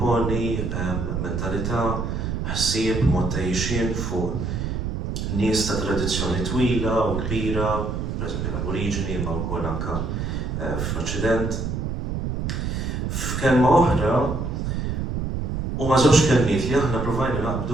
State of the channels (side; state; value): right; noise; rumble, 2 dB below the sound